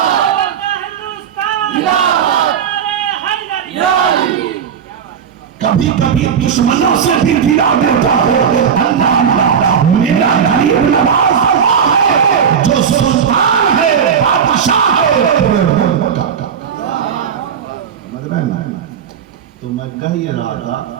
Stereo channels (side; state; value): left; quieter; 7.6 dB